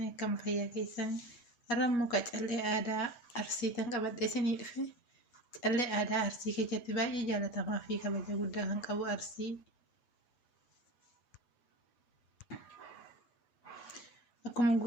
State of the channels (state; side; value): late; right; 8.3 ms